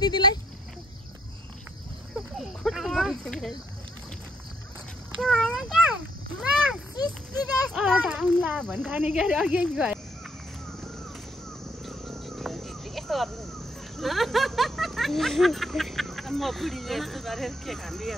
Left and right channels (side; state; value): both; normal; correlation 0.71